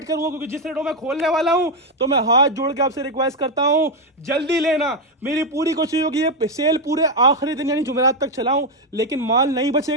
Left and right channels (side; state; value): both; normal; correlation 0.04